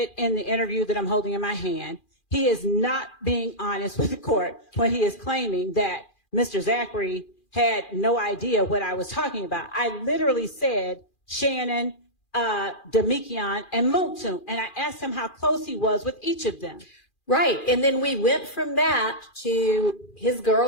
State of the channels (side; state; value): right; late; 2.4 ms